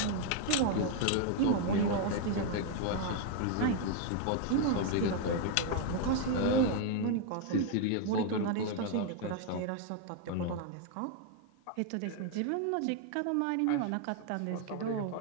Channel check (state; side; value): different; both; correlation 0.00